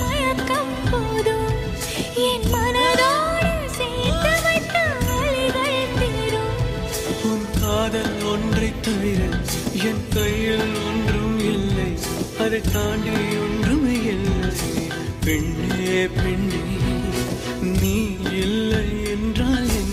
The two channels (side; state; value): both; identical; correlation 1.00